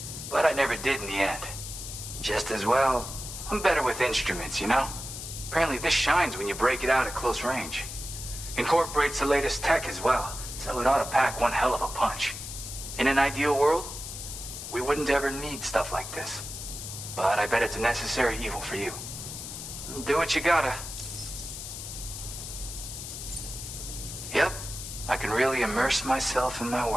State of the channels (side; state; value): left; noise; hiss, 9 dB below the sound